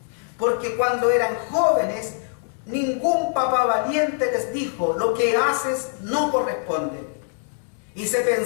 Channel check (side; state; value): right; silent; 63 dB below the other